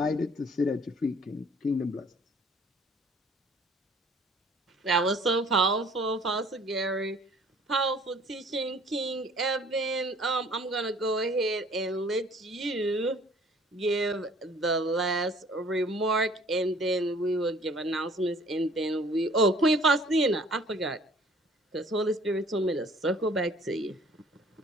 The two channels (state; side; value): normal; both; correlation 0.54